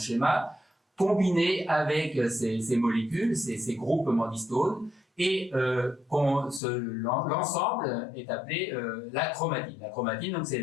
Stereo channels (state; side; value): drops out; right; at 6.6 s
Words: combiné avec ces molécules, ces groupements d'histones, et l'ensemble est appelé la chromatine. La chromatine, donc, c'est